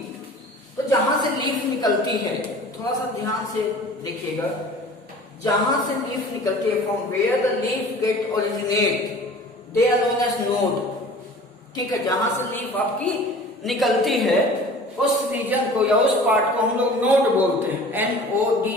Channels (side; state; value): both; normal; correlation 0.44